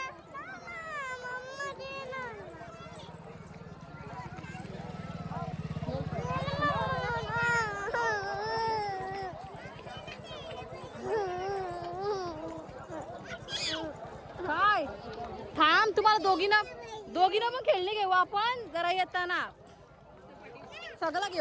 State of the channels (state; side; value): identical; both; correlation 1.00